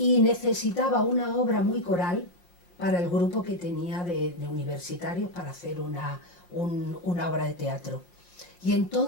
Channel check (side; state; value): right; late; 5.7 ms